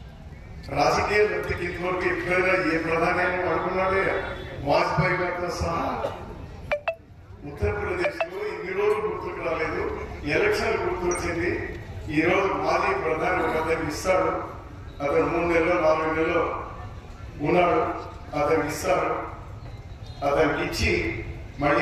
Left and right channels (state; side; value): identical; both; correlation 1.00